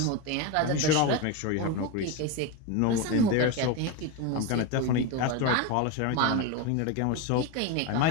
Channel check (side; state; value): both; different; correlation 0.04